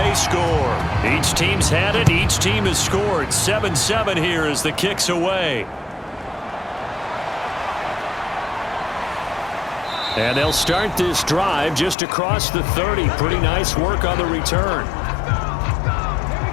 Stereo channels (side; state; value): right; drops out; at 12.0 s